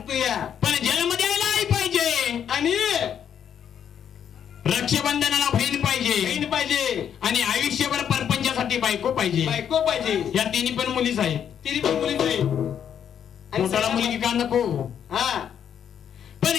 या पण जन्म द्यायला आई पाहिजे आणि रक्षाबंधनाला बहीण पाहिजे बहीण पाहिजे आणि आयुष्यभर परपंचासाठी बायको पाहिजे बायको पाहिजे या तिन्ही पण मुलीच आहेत तिने पण मुली पाहिजे पोटाला मुलगी का नको हा पण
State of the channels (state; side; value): quieter; right; 8.7 dB